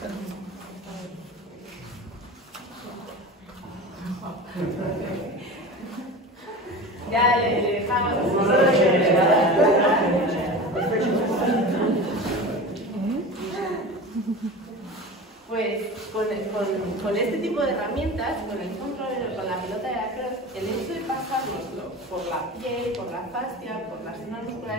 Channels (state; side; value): normal; both; correlation 0.32